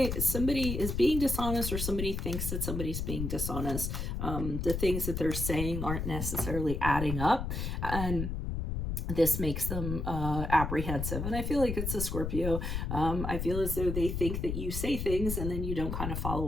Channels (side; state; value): left; noise; rumble, 3 dB below the sound